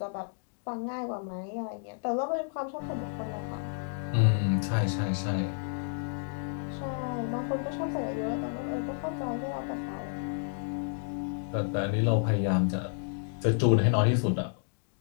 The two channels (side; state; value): right; silent; digital silence